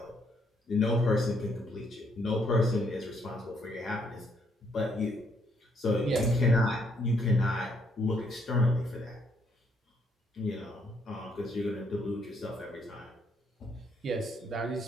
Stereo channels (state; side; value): normal; both; correlation 0.71